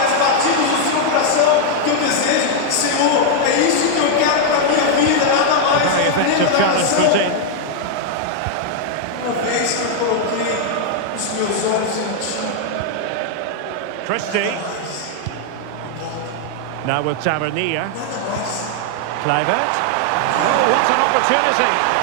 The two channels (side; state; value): both; different; correlation 0.00